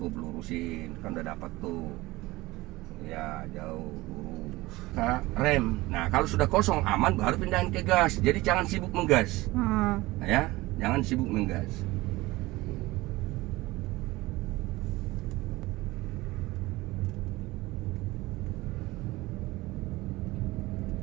lurusin, kan udah dapat tuh. Ya, jauh lurus. Nah, rem. Nah, kalau sudah kosong aman baru pindahin ke gas. Jadi jangan sibuk menggas. Nah, ya, jangan sibuk menggas.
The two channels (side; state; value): left; quieter; 19.9 dB